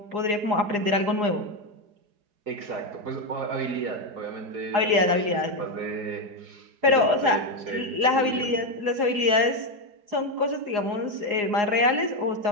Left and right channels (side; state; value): left; late; 4.8 ms